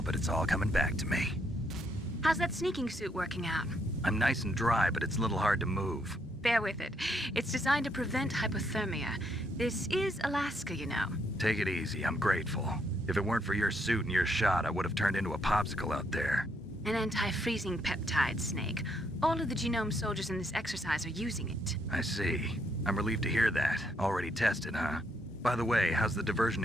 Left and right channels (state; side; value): normal; both; correlation 0.74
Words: but it's all coming back to me. How's that sneaking suit working out? I'm nice and dry, but it's a little hard to move. Bear with it. It's designed to prevent hypothermia. This is Alaska, you know. Take it easy. I'm grateful. If it weren't for your suit and your shot, I would have turned into a popsicle out there. An anti-freezing peptide, Snake. All of the genome soldiers in this exercise are using it. I see. I'm relieved to hear that. Already tested, huh? By the way, how's the